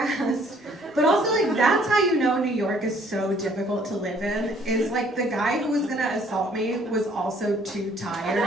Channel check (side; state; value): both; normal; correlation 0.61